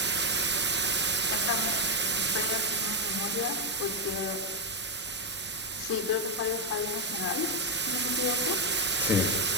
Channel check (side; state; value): both; normal; correlation 0.02